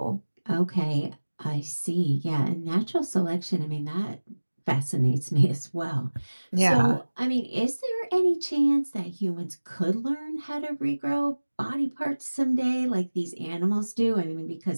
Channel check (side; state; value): both; inverted; correlation -1.00